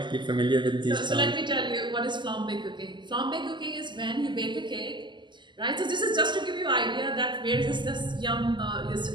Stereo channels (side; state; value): left; late; 0.22 ms